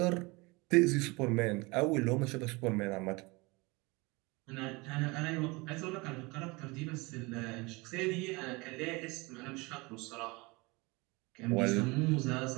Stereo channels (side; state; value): left; quieter; 25.4 dB